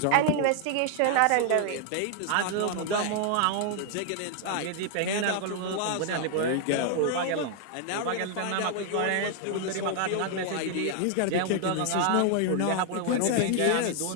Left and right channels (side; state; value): both; different; correlation 0.00